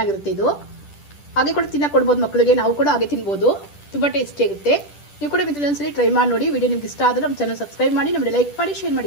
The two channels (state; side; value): late; right; 10 ms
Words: ಇದು. ಹಾಗೆ ಕೂಡ ತಿನ್ನಕ್ಕೆ ಕೊಡ್ಬೋದು ಮಕ್ಕಳಿಗೆ, ನಾವು ಕೂಡ ಹಾಗೆ ತಿನ್ಬೋದು, ತುಂಬಾ ಟೇಸ್ಟಿ ಆಗುತ್ತೆ. ನೀವು ಕೂಡ ಒಂದ್ಸಲಿ ಟ್ರೈ ಮಾಡಿ ನೋಡಿ. ವಿಡಿಯೋ ನಿಮ್ಗೆ ಇಷ್ಟ ಆದ್ರೆ ನಮ್ಮ ಚಾನಲ್ ಸಬ್ಸ್ಕ್ರೈಬ್ ಮಾಡಿ, ನಮಗೆ ಲೈಕ್ ಮಾಡಿ, ಶೇರ್